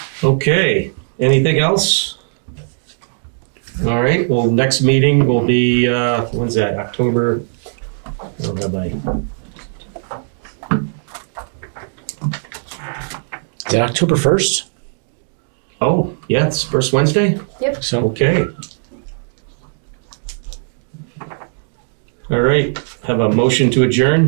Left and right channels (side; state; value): left; silent; digital silence